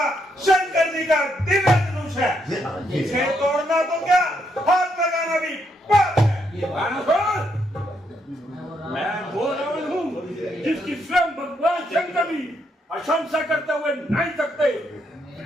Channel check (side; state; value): both; normal; correlation 0.76